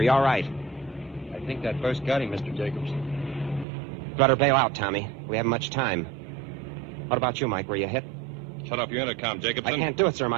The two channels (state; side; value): drops out; left; at 3.7 s